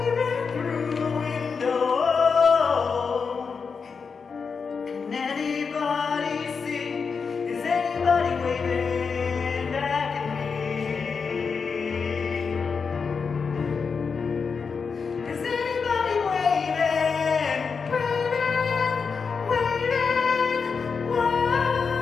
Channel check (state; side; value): quieter; right; 5.5 dB